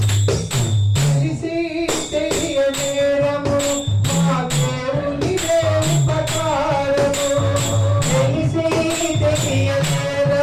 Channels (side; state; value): both; identical; correlation 1.00